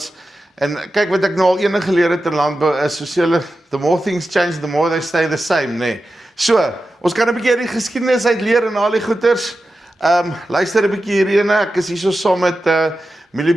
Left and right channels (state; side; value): normal; both; correlation 0.92